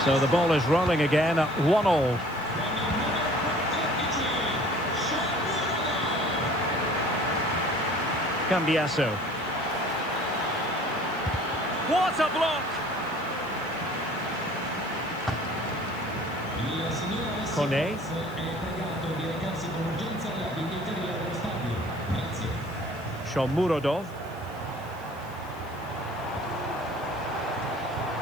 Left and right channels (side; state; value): right; noise; hiss, 25 dB below the sound